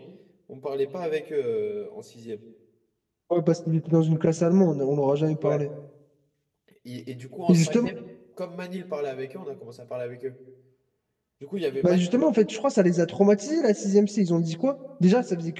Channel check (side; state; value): both; identical; correlation 1.00